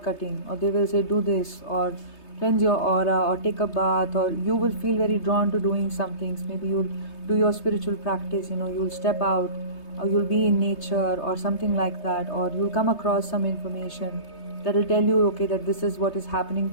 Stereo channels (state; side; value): late; right; 3.3 ms